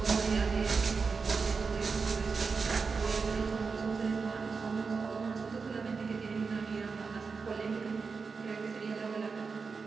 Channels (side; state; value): left; quieter; 4.9 dB